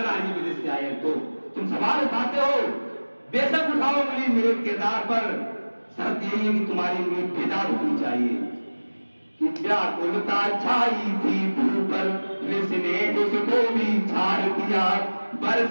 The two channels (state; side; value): inverted; both; correlation -1.00